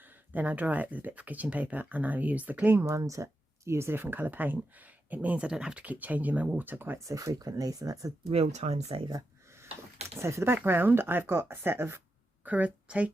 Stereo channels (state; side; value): normal; both; correlation 0.88